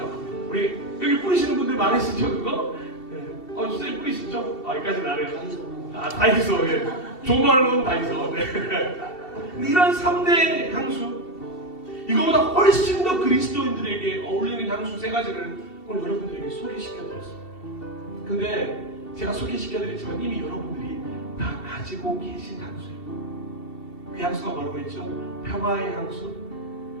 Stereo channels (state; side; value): late; right; 2.7 ms